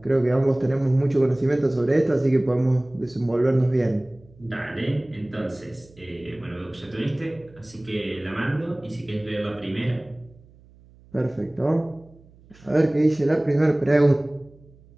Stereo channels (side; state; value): right; noise; hum, 26 dB below the sound